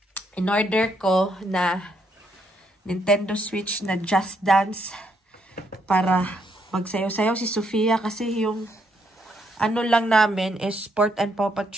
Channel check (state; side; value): normal; both; correlation 0.74